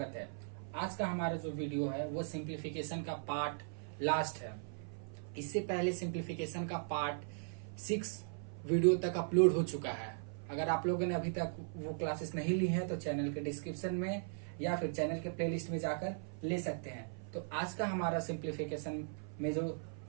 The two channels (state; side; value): silent; left; 52 dB below the other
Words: है। आज का हमारा जो वीडियो है वो सिंप्लीफिकेशन का पार्ट लास्ट है। इससे पहले सिंप्लीफिकेशन का पार्ट 6 वीडियो तक अपलोड हो चुका है। अगर आप लोगों ने अभी तक वो क्लासेस नहीं ली है तो चैनल के डिस्क्रिप्शन में या फिर चैनल के प्लेलिस्ट में जाकर ले सकते हैं। तो आज का हमारा सिंप्लीफिकेशन में जो